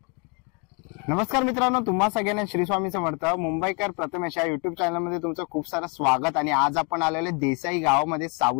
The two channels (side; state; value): right; quieter; 34.5 dB